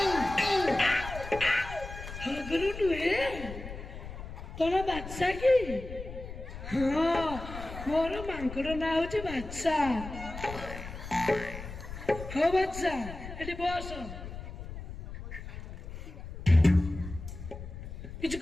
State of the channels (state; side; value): noise; left; rumble, 10 dB below the sound